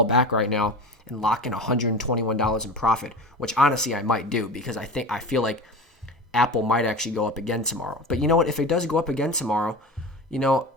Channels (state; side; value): normal; both; correlation 0.31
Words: back right now and lock in $121 in profit, which honestly I might do because I feel like Apple might actually go up again tomorrow. But you know what? If it does go up again tomorrow,